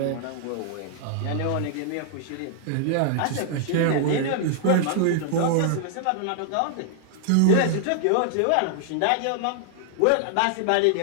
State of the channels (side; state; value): both; different; correlation -0.01